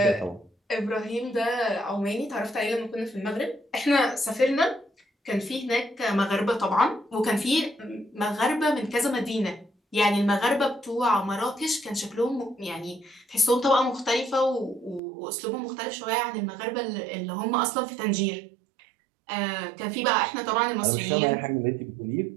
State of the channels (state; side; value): drops out; left; at 15.0 s